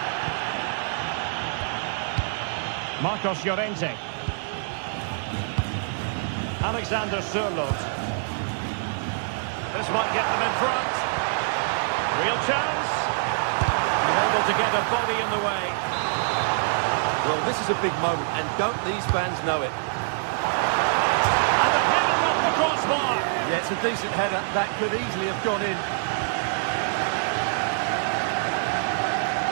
Marcos Llorente. Alexander Sørloth. This might get them in front. Real chance. And able to get a body in the way. Well, this is a big moment, and don't these fans know it? And the header decent header. That could easily have gone in.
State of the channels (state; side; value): silent; left; digital silence